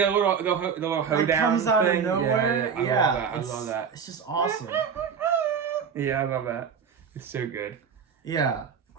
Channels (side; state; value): left; quieter; 6.8 dB